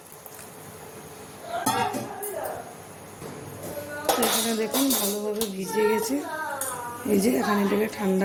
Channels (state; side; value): identical; both; correlation 1.00